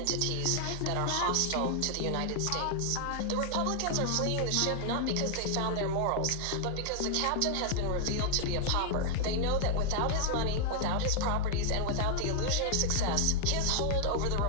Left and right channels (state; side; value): different; both; correlation 0.00